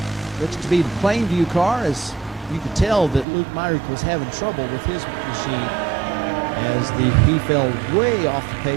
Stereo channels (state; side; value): drops out; left; at 3.2 s